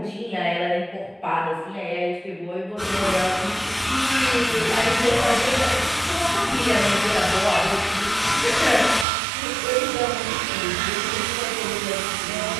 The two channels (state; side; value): drops out; left; at 9.1 s